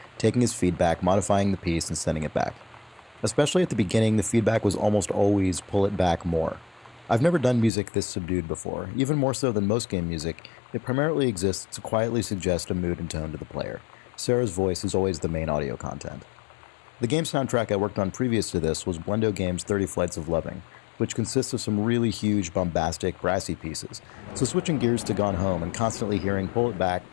taking his feedback, modifying the piece, and sending it back. Especially at the beginning, the feedback was almost always pull it back more. I've never done music this subdued before. Even more so than most game music, it primarily exists to quietly suggest a mood and tone to the player. Sarah's voice is always the main audio content. The game soundtrack I worked on previous to this was Blendo Games' 30 Flights of Loving, which consists of some really huge, bombastic, brassy pieces. So switching gears to Gone Home and constantly hearing pull it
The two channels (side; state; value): right; drops out; at 7.7 s